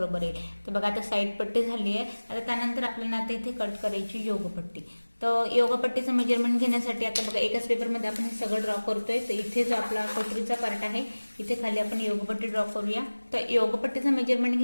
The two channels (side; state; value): both; inverted; correlation -1.00